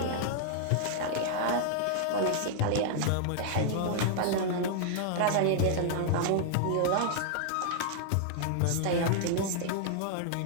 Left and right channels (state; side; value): different; both; correlation -0.01